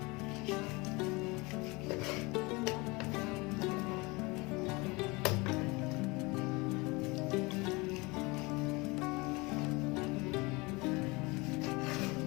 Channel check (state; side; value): quieter; right; 25.1 dB